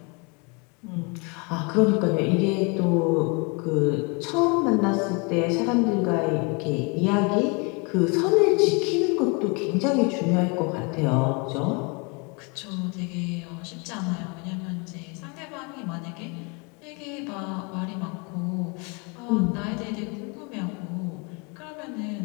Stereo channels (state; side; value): quieter; right; 30.8 dB